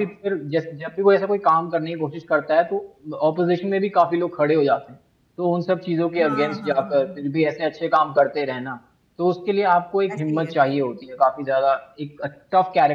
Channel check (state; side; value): identical; both; correlation 1.00